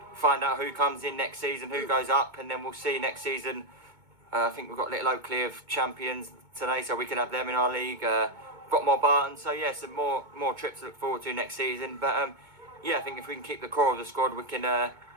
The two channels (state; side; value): late; left; 2.2 ms